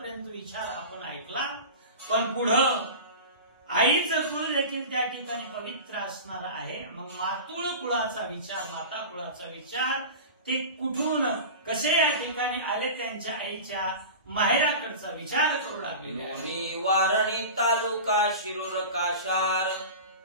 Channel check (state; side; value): inverted; both; correlation -0.32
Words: विचार आपण ऐकला. पण पुढं आईचं कुळ देखील त्या ठिकाणी पवित्र असणार आहे. मग मातुळ कुळाचा विचार, माता कुळाचा विचार ते कुठून कसे या ठिकाणी आले, त्यांच्या आईच्या माहेराकडचा विचार करू लागलेले. वारणी तालुका शिरूर काशार,